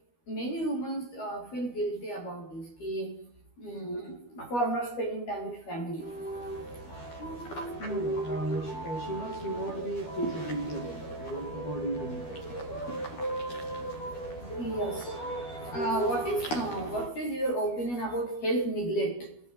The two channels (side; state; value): right; late; 12 ms